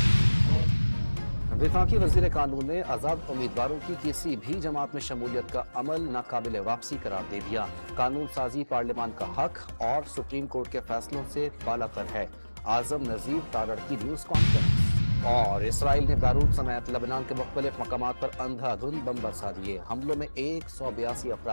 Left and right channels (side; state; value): both; inverted; correlation -1.00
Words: वफाकी वज़ीर कानून ने आज़ाद उम्मीदवारों की किसी भी जमात में शमूलियत का अमल नाकाबिल वापसी करार दे दिया। कानून साजी पार्लियामान का हक और सुप्रीम कोर्ट के फैसलों से बालातर है। आजम नजीर तारड़ की न्यूज कॉन्फ्रेंस। और इसराइल ने बैरूत समेत लबनान के मुख्तलिफ मकामात पर अंधाधुंध बम बरसा दिए। हमलों में 182